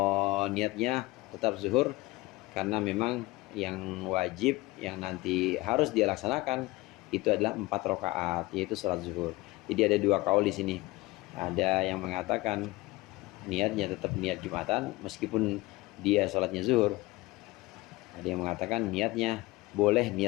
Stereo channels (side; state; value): right; quieter; 20.9 dB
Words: niatnya tetap zuhur karena memang yang wajib yang nanti harus dia laksanakan itu adalah 4 rakaat, yaitu salat zuhur. Jadi ada 2 kaul di sini. Ada yang mengatakan niatnya tetap niat Jumatan meskipun dia salatnya zuhur. Ada yang mengatakan niatnya boleh